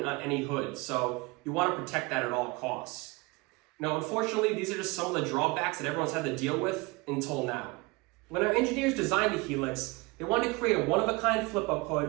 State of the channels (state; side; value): quieter; left; 25.3 dB